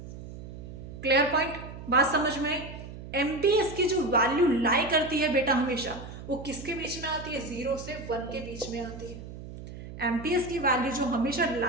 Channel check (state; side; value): noise; right; hum, 12 dB below the sound